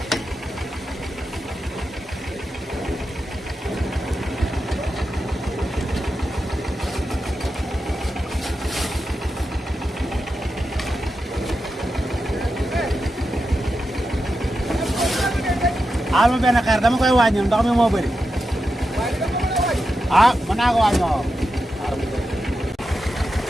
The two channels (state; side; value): normal; both; correlation 0.89